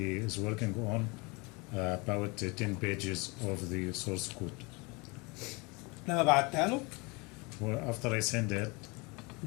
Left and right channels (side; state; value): right; quieter; 27.8 dB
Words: is working on, about 10 pages of the source code. لما بعتها له Well, after I send it,